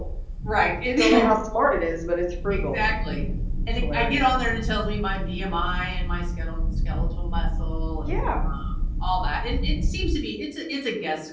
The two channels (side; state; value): both; identical; correlation 1.00